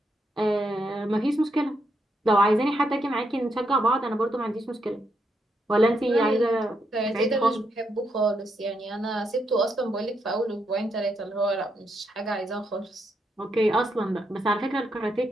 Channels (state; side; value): normal; both; correlation 0.79